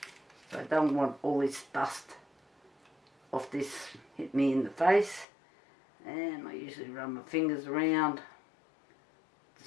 So I don't want all this dust off this hit me in the face. And I usually run my fingers around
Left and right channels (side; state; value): right; drops out; at 5.2 s